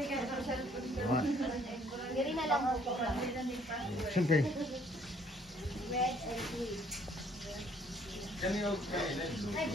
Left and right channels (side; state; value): both; normal; correlation 0.62